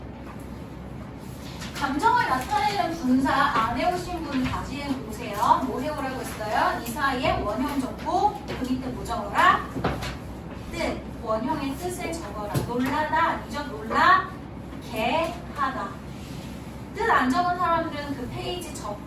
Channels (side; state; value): both; identical; correlation 1.00